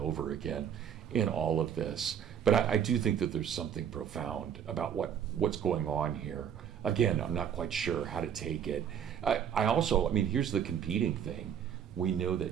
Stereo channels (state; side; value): quieter; left; 8.6 dB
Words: again in all of this. But I do think that there's something profound about what's going on here. Again, I'm not quite sure how to take it. Here's the competing thing. We know